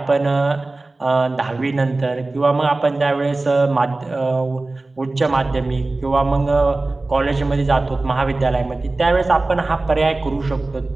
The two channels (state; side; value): quieter; left; 3.1 dB